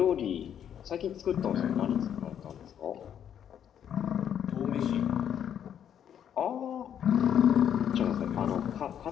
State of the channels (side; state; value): right; quieter; 9.2 dB